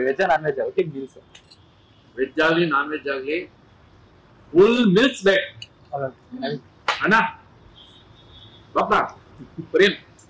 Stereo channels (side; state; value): both; identical; correlation 1.00